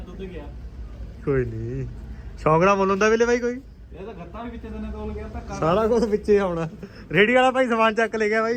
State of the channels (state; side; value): identical; both; correlation 1.00